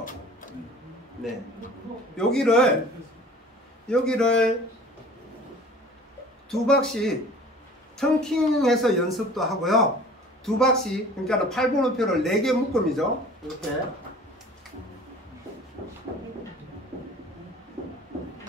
네. 여기를 두 박씩 텅킹해서 연습도 하고요. 두 박씩, 그러니까 8번호표를 4개 묶음이죠. 이렇게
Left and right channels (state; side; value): normal; both; correlation 0.45